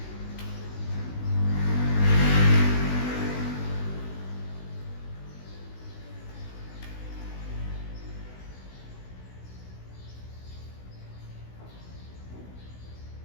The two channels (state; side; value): late; right; 16 ms